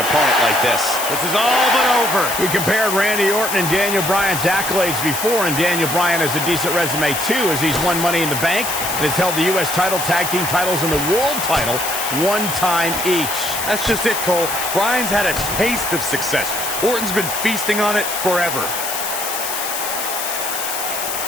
opponent like this. This is all but over. We compared Randy Orton and Daniel Bryan's accolades before, and Daniel Bryan has a decent resume too, as he's won Money in the Bank and has held the U.S. title, tag team titles, and the world title one time each. That's just it, Cole. Bryan's had a taste of success. Orton's been feasting on it forever.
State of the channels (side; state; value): left; noise; hiss, 4 dB below the sound